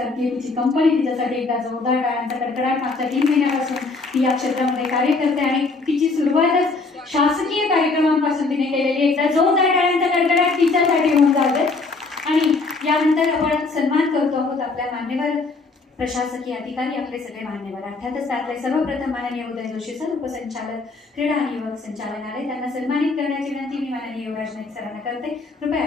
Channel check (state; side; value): quieter; right; 3.8 dB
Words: तिची कंपनी तिच्यासाठी एकदा जोरदार टाळ्यांचा कडकडाट मागच्या 3 महिन्यापासून ती या क्षेत्रामध्ये कार्य करते आणि तिची सुरुवातच शासकीय कार्यक्रमांपासून तिने केलेली. एकदा जोरदार टाळ्यांचा कडकडाट तिच्यासाठी होऊन जाते. आणि यानंतर आपण सन्मान करतो आहोत आपल्या मान्यवर प्रशासकीय अधिकारी, आपले सगळे मान्यवर, अर्थातच त्यातले सर्वप्रथम माननीय उदय जोशी सर, उपसंचालक क्रीडा आणि युवक संचालनालय, त्यांना सन्मानित करण्याची विनंती मी माननीय युवराज नाईक सरांना करते. कृपया